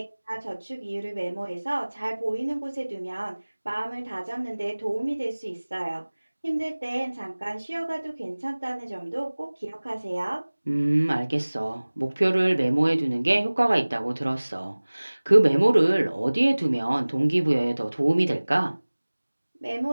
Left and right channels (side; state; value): both; inverted; correlation -1.00